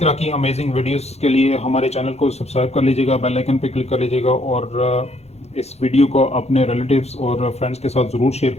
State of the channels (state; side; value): late; right; 0.31 ms